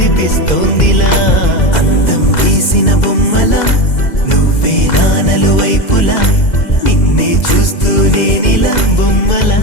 అందం గీసిన బొమ్మల నువ్వే నానలు వైపులా నిన్నే చూస్తూనే నీలా బొమ్మలా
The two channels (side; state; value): right; late; 2.0 ms